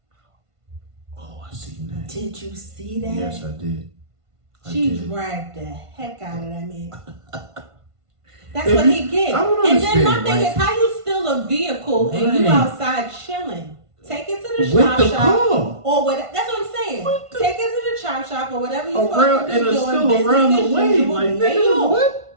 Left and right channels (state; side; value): late; left; 1.5 ms